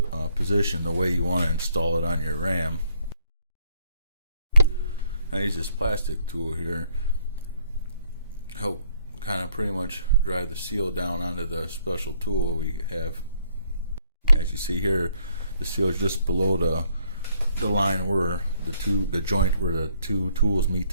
position, the way you want to install it on your ram. I use this plastic tool here, help kind of pretty much drive the seal down onto the special tool we have. As you see here, the seal is just below the line where the joint where the two tools meet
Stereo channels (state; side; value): inverted; both; correlation -0.68